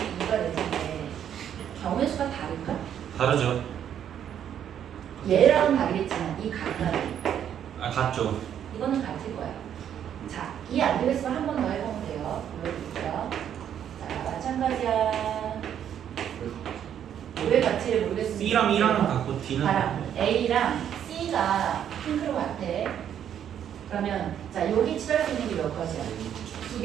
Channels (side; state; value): left; quieter; 9.5 dB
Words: E가 될 텐데 경우의 수가 다를까? 다르죠. 얘랑 다르겠지만 이 각각이 아, 같죠. 이거는 같을 거야. 자, 이해 안 되겠으면 한 번 더 해보면 돼요. 보여드릴게요. 자, 마찬가지야. 왜 같지를 모르겠으면 C랑 E랑은 같고 D는 봐라. A랑 C가 핑크로 같아. 그러면 자, 여기 칠할 수 있는 게 몇 가지야? 두